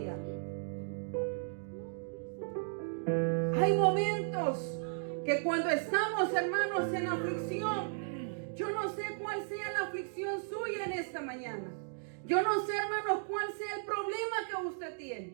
Hay momentos que cuando estamos, hermanos, en aflicción, yo no sé cuál sea la aflicción suya en esta mañana. Yo no sé, hermanos, cuál sea el problema que usted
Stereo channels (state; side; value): silent; left; digital silence